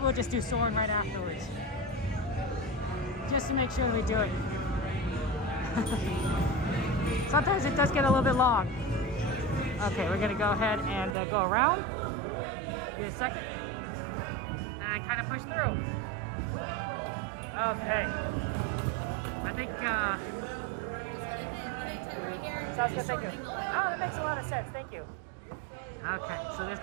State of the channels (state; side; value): drops out; left; at 11.2 s